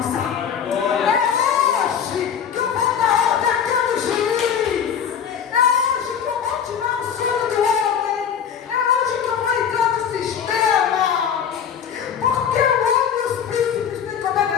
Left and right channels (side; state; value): right; quieter; 7.8 dB